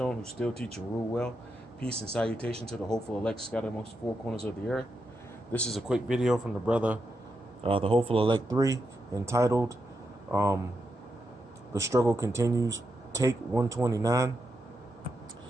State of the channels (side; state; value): both; normal; correlation 0.85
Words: who still teach and rule well. Peace and salutation to the hopeful elect scattered amongst the four corners of the earth. This is a quick video from the brother, the hopeful elect 3, entitled "The Struggle Continues." Take 129.